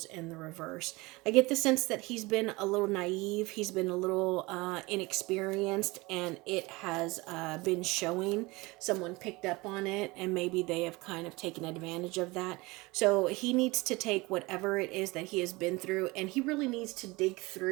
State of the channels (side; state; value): left; quieter; 23.2 dB